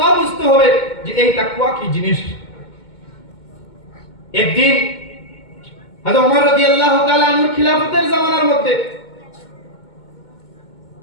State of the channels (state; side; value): late; right; 2.2 ms